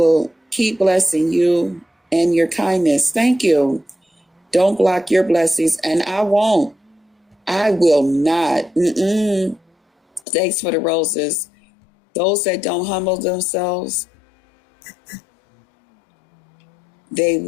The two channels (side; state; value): right; drops out; at 10.2 s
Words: keep blessing you and your kindness. Thank you. Don't block your blessings, and I won't. I will not. Thanks for the roses. Those that don't humble themselves, they